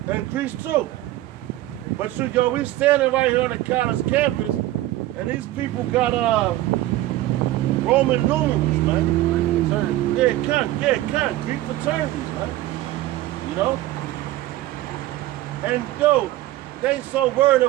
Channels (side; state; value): left; quieter; 15.8 dB